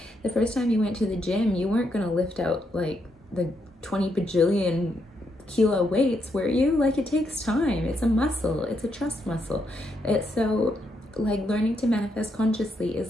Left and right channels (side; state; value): both; normal; correlation 0.78